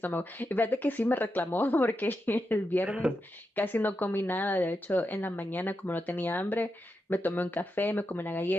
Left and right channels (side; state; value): both; normal; correlation 0.87